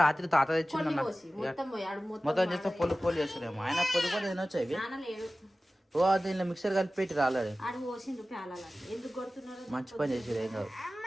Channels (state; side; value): normal; both; correlation 0.96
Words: రాత్రి తాత తెచ్చిండు అన్న మొత్తం చేస్తే పొల్లు పొల్లు చేస్తాడేమో ఆయన పొద్దు కూడా తినొచ్చు ఇవి ఓ దీనిలో మిక్సర్ కలిపి పెట్టి రాలేడు మంచి పని చేసాడు ఏం కాదు